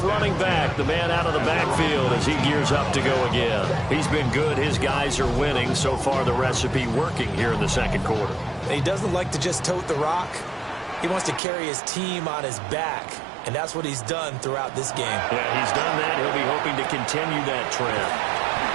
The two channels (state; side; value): drops out; left; at 11.4 s